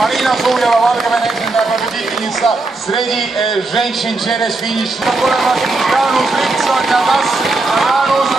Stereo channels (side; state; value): left; quieter; 3.3 dB